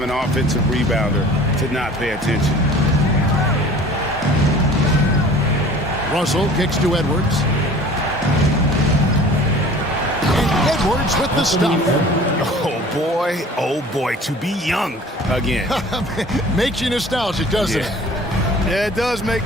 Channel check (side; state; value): both; normal; correlation 0.46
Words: an offensive rebounder to not pay attention. Russell kicks to Edwards. And Edwards with the stuff. Oh boy, to be young again. Makes you nostalgic, doesn't it? Yeah, it does make